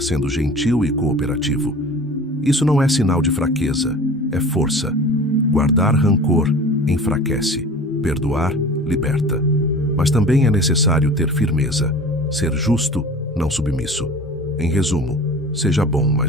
sendo gentil e cooperativo. Isso não é sinal de fraqueza, é força. Guardar rancor enfraquece, perdoar liberta. Mas também é necessário ter firmeza, ser justo, não submisso. Em resumo, seja bom,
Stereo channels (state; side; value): normal; both; correlation 0.40